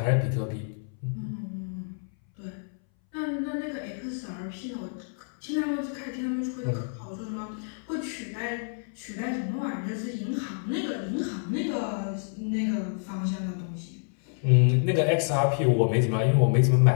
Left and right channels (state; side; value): silent; right; 59 dB below the other